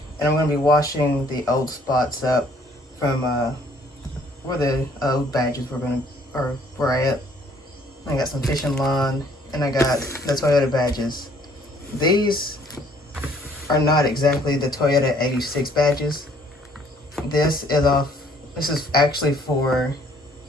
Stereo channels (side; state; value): both; normal; correlation 0.61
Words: And I'm going to be washing the old spots up from where the old badges were at. I got some fishing line, and I got the Toyota badges. These are not exactly the Toyota 86 badges. This is actually for